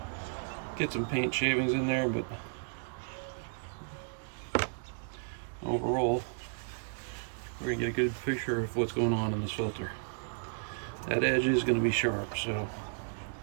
get some paint shavings in there, but overall we're gonna get a good picture of what's going on in this filter. That edge is gonna be sharp, so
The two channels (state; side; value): silent; left; digital silence